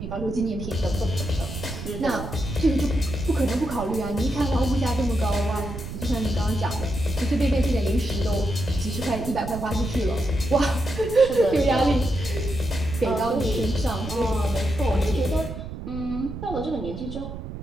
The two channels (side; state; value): right; noise; rumble, 8 dB below the sound